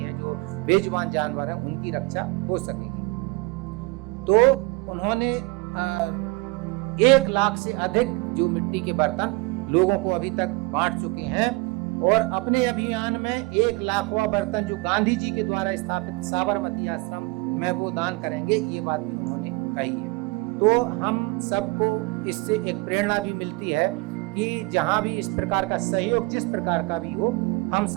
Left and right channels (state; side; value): quieter; left; 24.3 dB